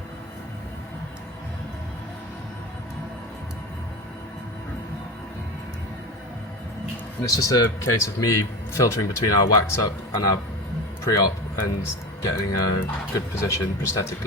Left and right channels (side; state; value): both; normal; correlation 0.27